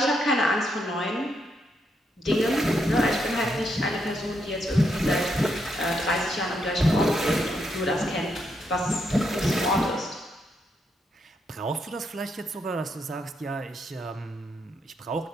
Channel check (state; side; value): normal; both; correlation 0.79